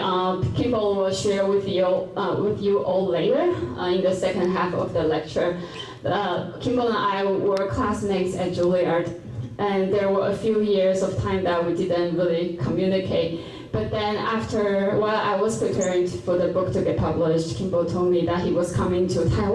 Kimball will share with you all later in the second half of the lecture. Kimball and I were classmates at Juilliard, and there were a few years of time that we didn't really communicate. But then while I was preparing for the book to get published, Kimball told me that he was coming to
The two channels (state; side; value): identical; both; correlation 1.00